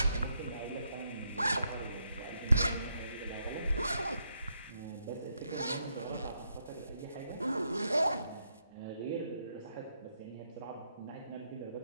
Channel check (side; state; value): both; inverted; correlation -0.79